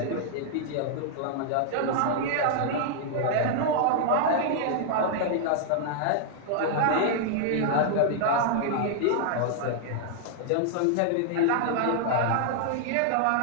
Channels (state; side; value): different; both; correlation -0.01